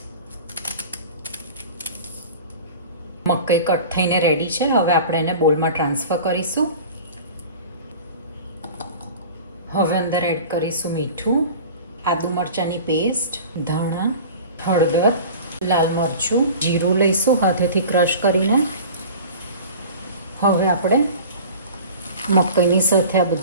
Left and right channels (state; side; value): inverted; both; correlation -0.39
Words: મકાઈ કટ થઈને રેડી છે. હવે આપણે એને બોલમાં ટ્રાન્સફર કરીશું. હવે અંદર એડ કરીશું મીઠું, આદુ મરચાંની પેસ્ટ, ધાણા, હળદર, લાલ મરચું, જીરું લઈશું હાથેથી ક્રશ કરીને. હવે આપણે મકાઈની સાથે આ